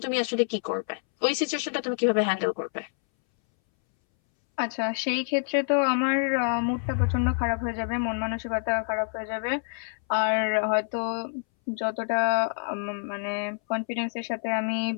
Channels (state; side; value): silent; right; 60 dB below the other